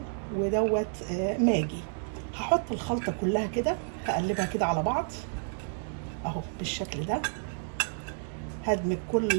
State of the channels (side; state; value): left; silent; digital silence